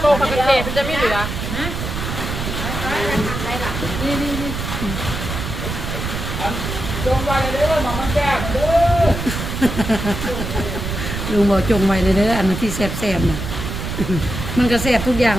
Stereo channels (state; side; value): noise; right; rumble, 5 dB below the sound